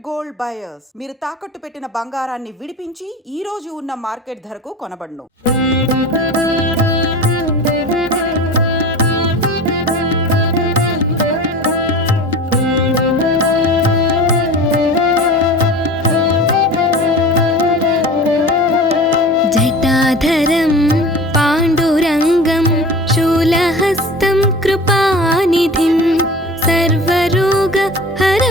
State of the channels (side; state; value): both; normal; correlation 0.36